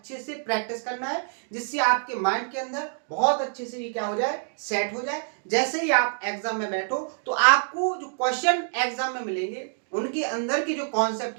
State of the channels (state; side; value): silent; left; digital silence